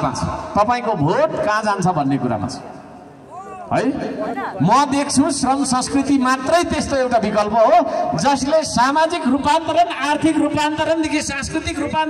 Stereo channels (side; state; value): both; identical; correlation 1.00